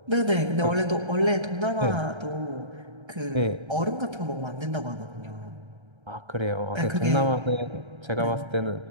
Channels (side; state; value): left; late; 1.3 ms